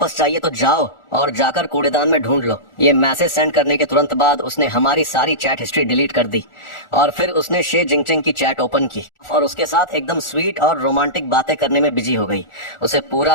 चाहिए तो जाओ और जाकर कूड़ेदान में ढूंढ लो। ये मैसेज सेंड करने के तुरंत बाद उसने हमारी सारी चैट हिस्ट्री डिलीट कर दी और फिर उसने शे जिंगचेंग की चैट ओपन की और उसके साथ एकदम स्वीट और रोमांटिक बातें करने में बिजी हो गई। उसे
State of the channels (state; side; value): late; right; 1.4 ms